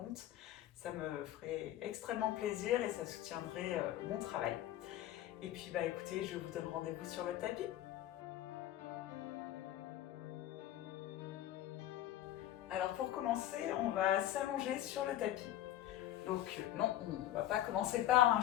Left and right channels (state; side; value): quieter; right; 13.0 dB